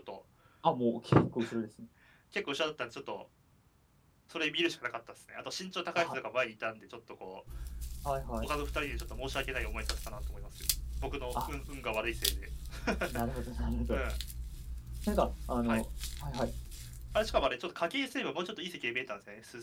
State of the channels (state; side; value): identical; both; correlation 1.00